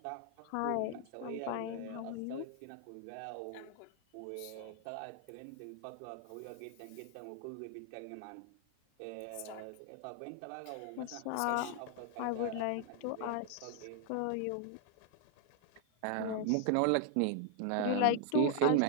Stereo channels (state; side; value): different; both; correlation 0.00